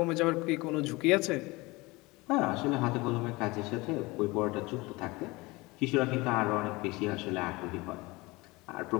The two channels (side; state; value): right; quieter; 23.0 dB